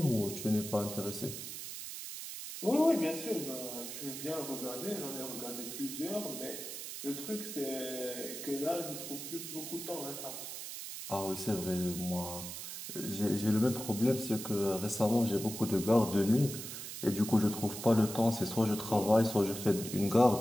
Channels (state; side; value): noise; right; hiss, 8 dB below the sound